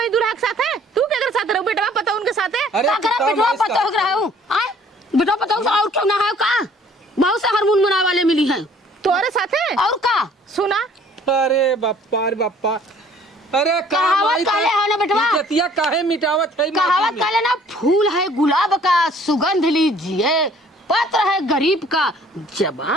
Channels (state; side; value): normal; both; correlation 0.56